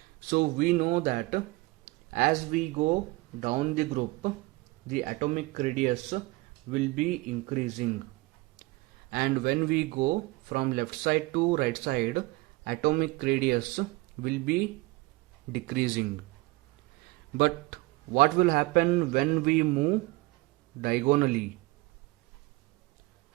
So we know that as we go down the group, the atomic radius will be increasing, and when we go from left side to right side, atomic radius will be decreasing. But what will happen when we move diagonally?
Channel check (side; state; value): left; quieter; 21.9 dB